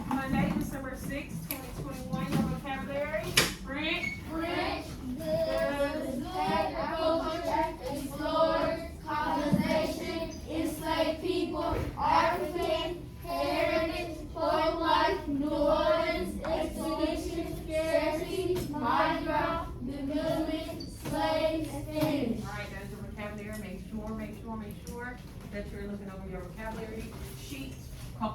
Monday, December 6th, 2021. Your vocabulary. French. French, goods, agriculture, explorers, colonization, enslaved people, African, heritage, folk life, New Orleans, expedition, scarcity, Mardi Gras, development, slaves, Spanish. Alright, that's your vocabulary. Make sure that you're looking over your vocabulary sheet a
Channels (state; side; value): identical; both; correlation 1.00